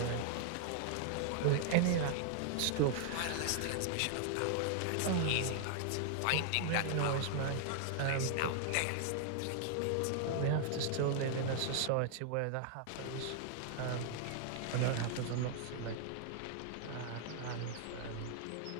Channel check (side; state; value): both; different; correlation 0.00